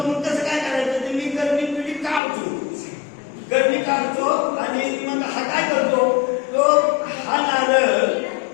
मग कसं काय करायचं, तर मी करणी तुझी काढतो, करणी काढतो आणि मग हा काय करतो, तो हा नारळ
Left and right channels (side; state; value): right; drops out; at 2.2 s